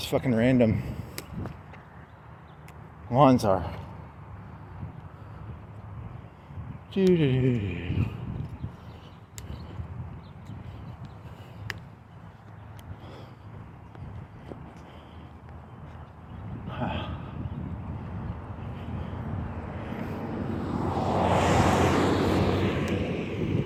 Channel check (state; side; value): identical; both; correlation 1.00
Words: fucking random lines are.